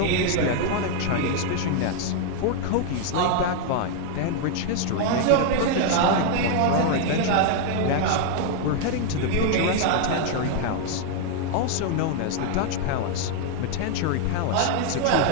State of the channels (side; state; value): both; different; correlation 0.00